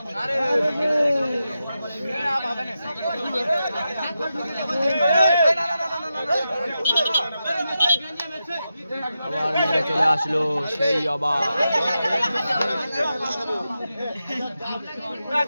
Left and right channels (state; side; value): inverted; both; correlation -0.89